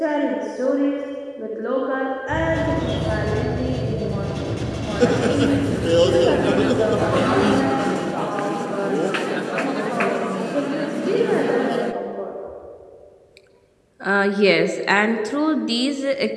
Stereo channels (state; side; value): identical; both; correlation 1.00